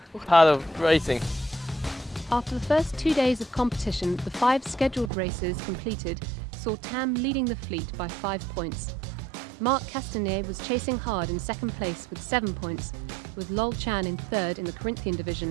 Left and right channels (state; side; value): drops out; left; at 5.1 s